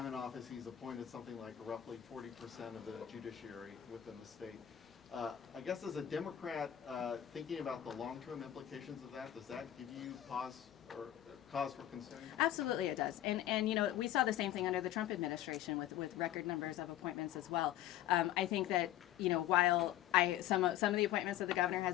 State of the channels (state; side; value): quieter; right; 12.2 dB